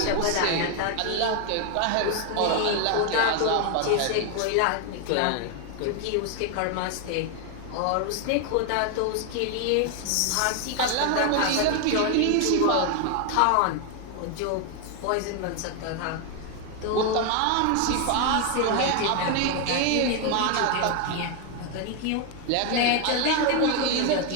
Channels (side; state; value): both; different; correlation 0.01